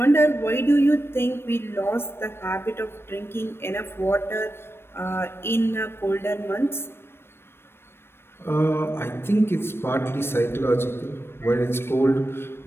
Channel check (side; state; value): right; late; 0.12 ms